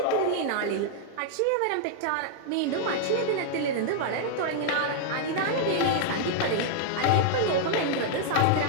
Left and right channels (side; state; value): both; different; correlation -0.01